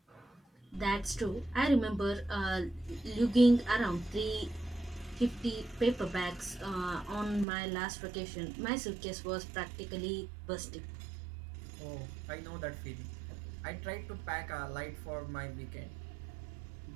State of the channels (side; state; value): left; drops out; at 7.5 s